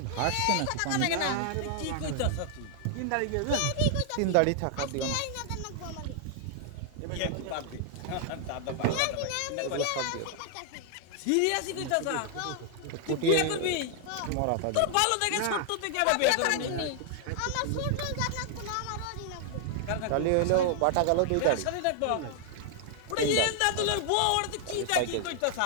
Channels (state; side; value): different; both; correlation 0.00